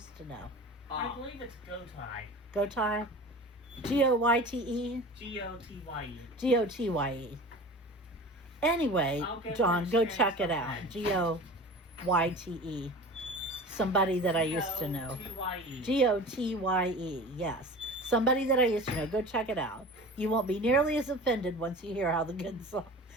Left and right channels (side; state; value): both; normal; correlation 0.37